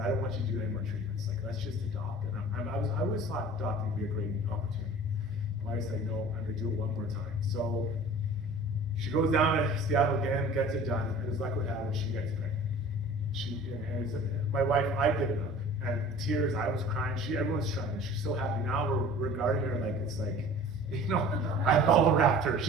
I don't want you to do any more treatments. Like, let's just adopt. And I always thought adopting would be a great opportunity. My wife said, no, I'm gonna do it one more time. So she goes down to Seattle again, gets it done, and as luck would have it, she gets pregnant. My wife, I did it up, and tears, I was crying, everyone's trying, she's so happy. Now we're regarding her like it's like, I bubble wrapped her.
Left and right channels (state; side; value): normal; both; correlation 0.44